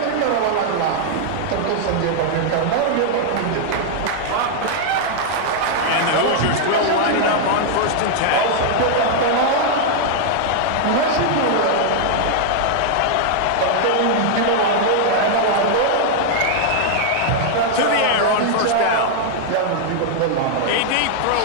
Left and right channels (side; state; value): both; different; correlation -0.01